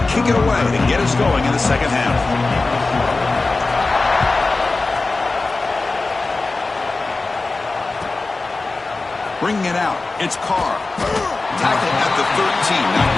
kick it away to get us going in the second half. Bringing it out, it's Carr. Tackle at the 13. Not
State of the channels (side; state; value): right; quieter; 3.5 dB